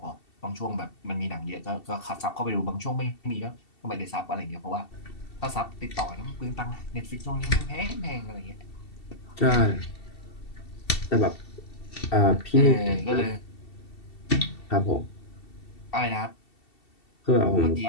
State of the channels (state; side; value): late; right; 2.7 ms